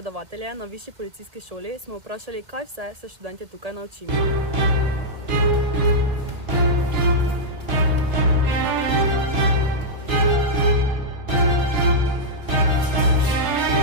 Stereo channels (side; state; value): left; late; 2.0 ms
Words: na Višji policijski šoli smo vprašali, kaj vse se študentje tukaj naučimo.